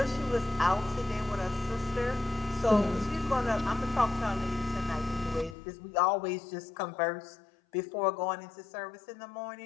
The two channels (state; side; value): drops out; right; at 5.6 s